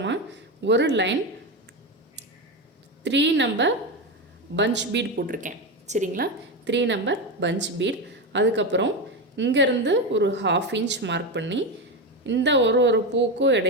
ஒரு லைன் 3 நம்பர் பஞ்ச் பீட் போட்டிருக்கேன் சரிங்களா. 3 நம்பர் பஞ்ச் பீட். அதுக்கப்புறம் இங்கேருந்து ஒரு 1/2 இன்ச் மார்க் பண்ணி இந்த ஒரு பூக்கும்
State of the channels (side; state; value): both; normal; correlation 0.14